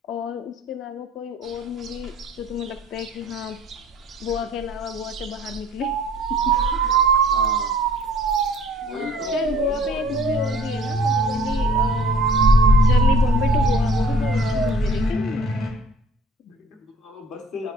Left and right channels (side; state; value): both; normal; correlation 0.52